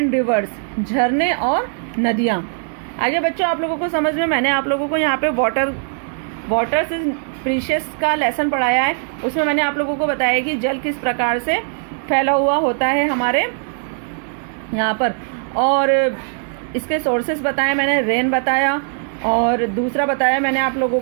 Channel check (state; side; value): silent; left; digital silence